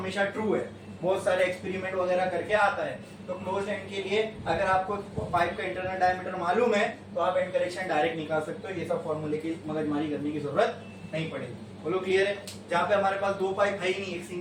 ट्रू है, बहुत सारे एक्सपेरिमेंट वगैरह करके आता है। तो क्लोज एंड के लिए अगर आपको पाइप का इंटरनल डायमीटर मालूम है तो आप एंड करेक्शन डायरेक्ट निकाल सकते हो, ये सब फॉर्मूले की मगजमारी करने की जरूरत नहीं पड़ेगी। बोलो क्लियर है। जहाँ पे हमारे पास दो पाइप है ही नहीं, एक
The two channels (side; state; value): both; identical; correlation 1.00